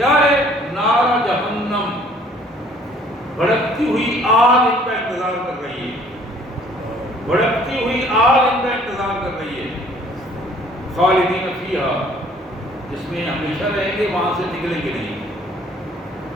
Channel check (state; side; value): normal; both; correlation 0.57